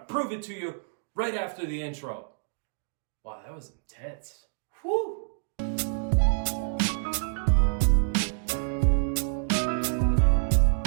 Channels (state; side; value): silent; left; digital silence